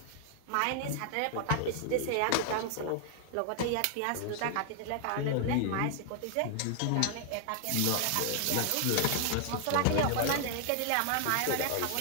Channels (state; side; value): different; both; correlation 0.00